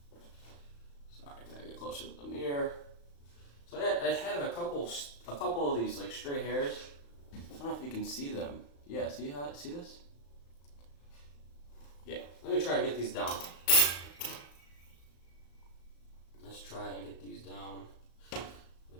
Sorry, I gotta get closer to the mirror. So I have a couple of these like stray hairs. I don't know if you can see them. Yeah, see this? Yeah, let me try and get these down. Let's try and get these down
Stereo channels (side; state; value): right; late; 35 ms